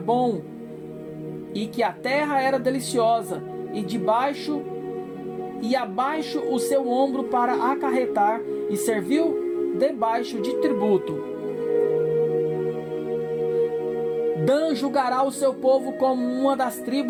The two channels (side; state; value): both; identical; correlation 1.00